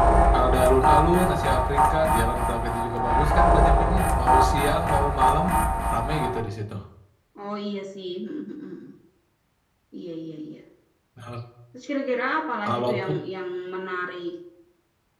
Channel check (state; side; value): identical; both; correlation 1.00